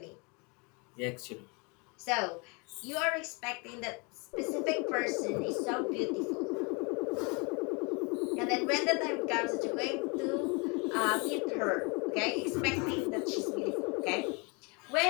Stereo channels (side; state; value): right; quieter; 30.9 dB